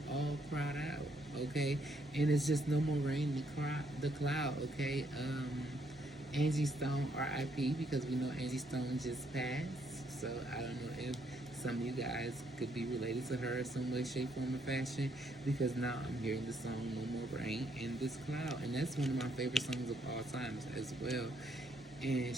all cried out, okay? And it's just no more rain in the cloud, okay? Angie Stone, RIP, because we know Angie Stone just passed. So I don't know if some of you guys could be related to her in some way, shape, form, or fashion. Because now I'm hearing the song "No More Rain in This Cloud," and that's one of my favorite songs of all times as well. And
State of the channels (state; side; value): normal; both; correlation 0.72